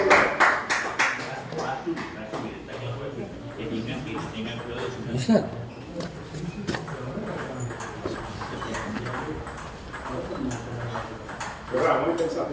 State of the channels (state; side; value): identical; both; correlation 1.00